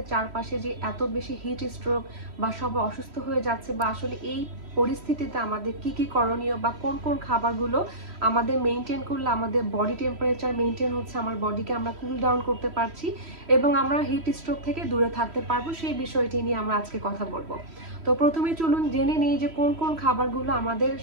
চারপাশে যে এত বেশি হিট স্ট্রোক বা সবাই অসুস্থ হয়ে যাচ্ছে, বা আসলে এই পরিস্থিতিতে আমাদের কি কি করণীয় বা কোন কোন খাবারগুলো আমাদের মেনটেন করলে আমাদের বডি টেম্পারেচার মেনটেন হচ্ছে, আমার বডিকে আমরা কুল ডাউন করতে পারছি এবং আমরা হিট স্ট্রোক থেকে দূরে থাকতে পারবো, সেই বিষয়টি নিয়ে আমরা আজকে কথা বলবো। তো প্রথমে চলুন জেনে নিই যে কোন কোন খাবারগুলো আমাদের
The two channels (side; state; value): left; late; 3.1 ms